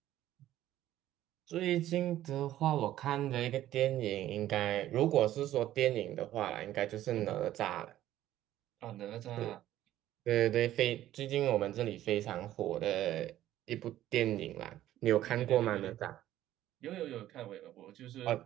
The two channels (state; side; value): quieter; left; 13.4 dB